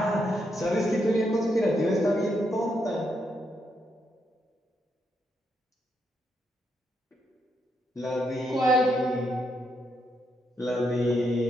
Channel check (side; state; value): both; normal; correlation 0.79